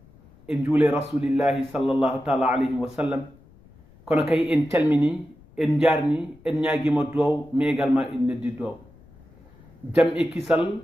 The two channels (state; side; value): noise; left; rumble, 26 dB below the sound